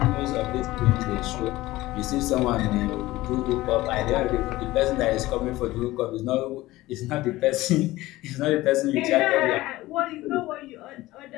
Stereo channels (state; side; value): quieter; right; 17.9 dB